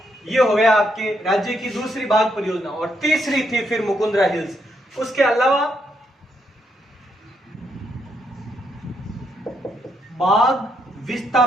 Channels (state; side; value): normal; both; correlation 0.77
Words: ये हो गया आपके राज्य की दूसरी बाघ परियोजना। और तीसरी थी फिर मुकुंदरा हिल्स। उसके अलावा बाघ